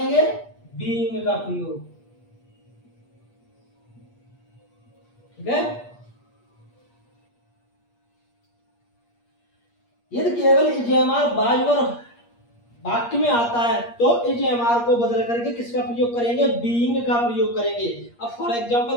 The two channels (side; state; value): right; late; 8.5 ms